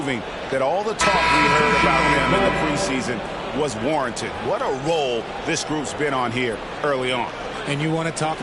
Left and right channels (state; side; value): identical; both; correlation 1.00